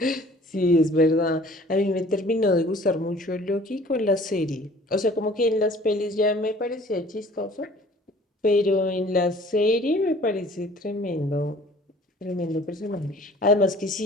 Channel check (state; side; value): normal; both; correlation 0.51